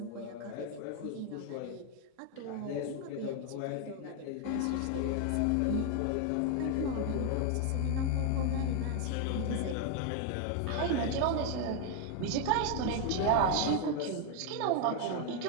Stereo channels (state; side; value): different; both; correlation 0.01